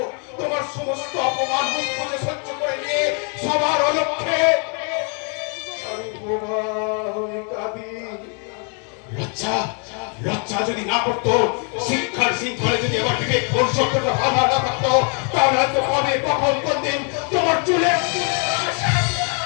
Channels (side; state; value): right; quieter; 39.7 dB